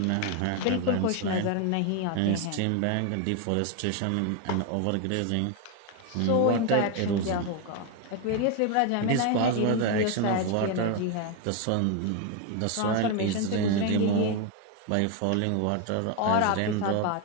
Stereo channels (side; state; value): both; different; correlation 0.01